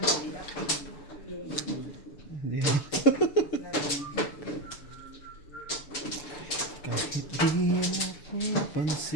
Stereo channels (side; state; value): right; late; 6.9 ms